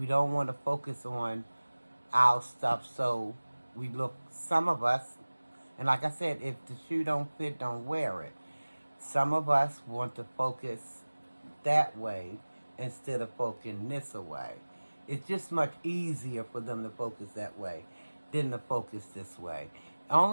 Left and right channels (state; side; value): inverted; both; correlation -1.00